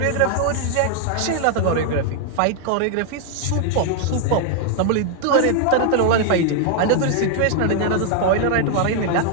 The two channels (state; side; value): different; both; correlation 0.00